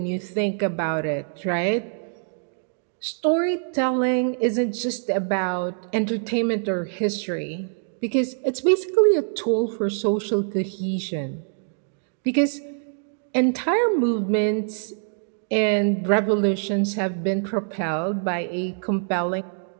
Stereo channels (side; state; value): left; silent; digital silence